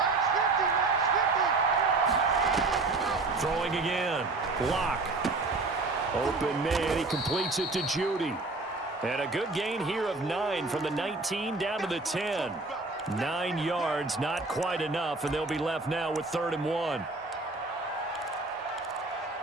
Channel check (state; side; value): quieter; left; 3.4 dB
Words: Throwing again. Locke. Open man. He completes it to Judy. And a good gain here of 9 from the 19 down to the 10. 9 yards, not quite enough, and they'll be left now with 3rd and 1.